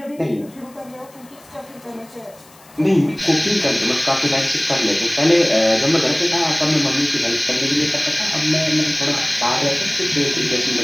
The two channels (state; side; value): noise; left; hiss, 26 dB below the sound